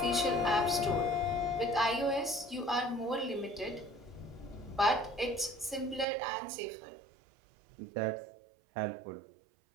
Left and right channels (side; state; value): left; drops out; at 6.1 s